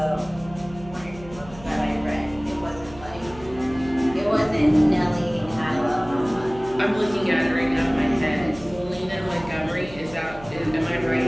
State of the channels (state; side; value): noise; right; hum, 18 dB below the sound